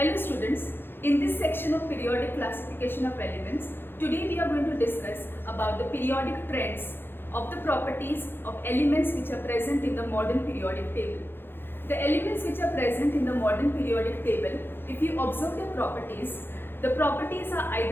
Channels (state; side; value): late; right; 0.10 ms